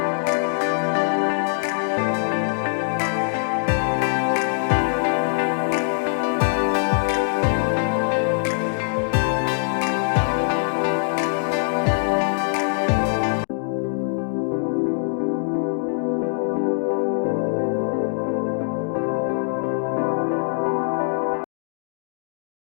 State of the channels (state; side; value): silent; right; digital silence